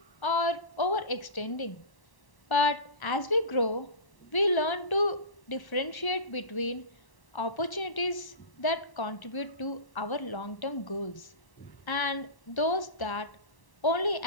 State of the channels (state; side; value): late; right; 1.0 ms